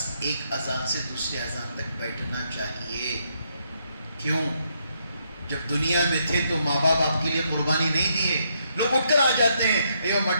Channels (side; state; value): both; inverted; correlation -0.75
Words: ایک اذان سے دوسری اذان تک بیٹھنا چاہیے۔ کیوں؟ جب دنیا میں تھے تو ماں باپ آپ کے لیے قربانی نہیں دیے، لوگ اٹھ کر آ جاتے ہیں، اے